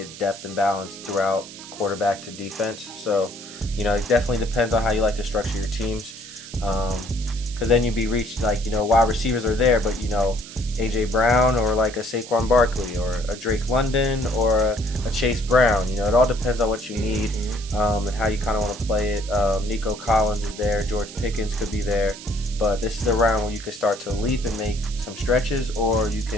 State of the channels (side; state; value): right; noise; hiss, 15 dB below the sound